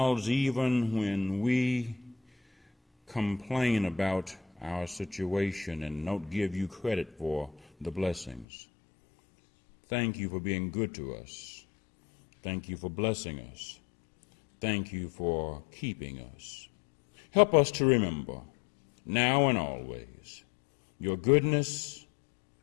even when we complain about our situation and don't give you credit for the blessings. Thank you for being good to us. Thank you for blessing us. Thank you for keeping us. Help us to remember, now and always, your goodness,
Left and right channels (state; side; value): drops out; right; at 8.5 s